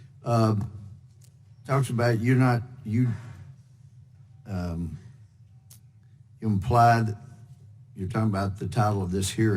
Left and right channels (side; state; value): both; identical; correlation 1.00